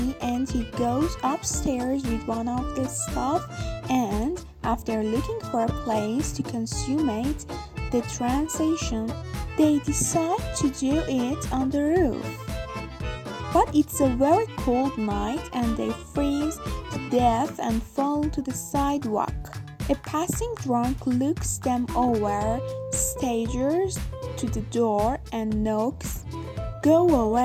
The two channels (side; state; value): both; identical; correlation 1.00